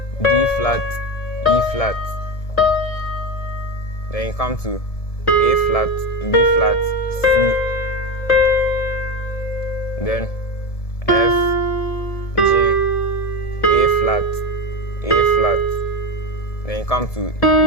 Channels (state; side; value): late; right; 1.7 ms